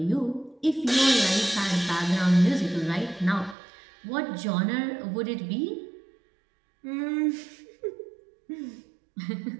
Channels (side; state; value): left; drops out; at 3.6 s